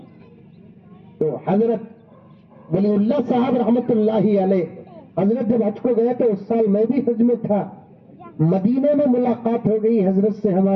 تو حضرت ولی اللہ صاحب رحمت اللہ علیہ, حضرت جب حج کو گئے تو اس سال میں بھی حج میں تھا. مدینے میں ملاقات ہو گئی حضرت سے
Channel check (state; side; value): identical; both; correlation 1.00